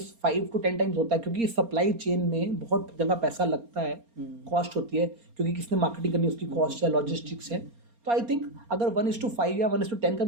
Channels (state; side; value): late; left; 4.3 ms